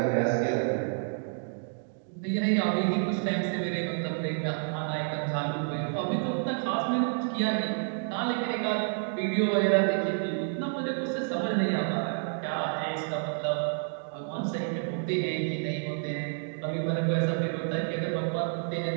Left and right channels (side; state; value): left; silent; 58 dB below the other